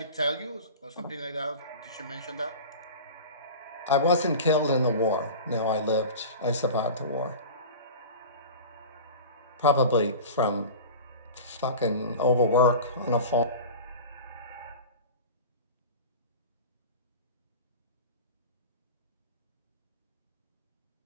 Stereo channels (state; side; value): inverted; both; correlation -0.34